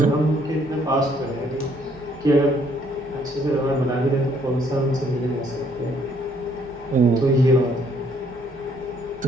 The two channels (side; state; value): both; normal; correlation 0.66